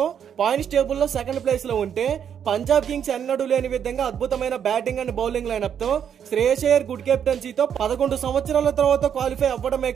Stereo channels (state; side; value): quieter; left; 8.4 dB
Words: పాయింట్స్ టేబుల్ లో సెకండ్ ప్లేస్ లో ఉంటే, పంజాబ్ కింగ్స్ ఎన్నడూ లేని విధంగా అద్భుతమైన బ్యాటింగ్ అండ్ బౌలింగ్ లైనప్ తో శ్రేయస్ అయ్యర్ గుడ్ కెప్టెన్సీతో 11 సంవత్సరాల తర్వాత క్వాలిఫై అవ్వడమే